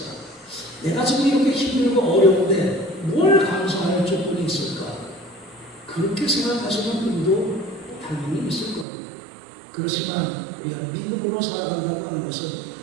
내가 지금 이렇게 힘들고 어려운데 뭘 감사할 조건이 있을까? 그렇게 생각하시는 분도 당연히 있을 겁니다. 그렇지만 우리가 믿음으로 살아간다고 하는 것은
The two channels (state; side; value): drops out; left; at 8.8 s